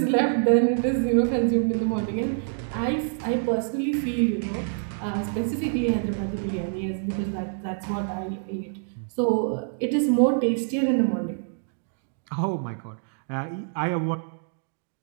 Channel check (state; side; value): silent; left; digital silence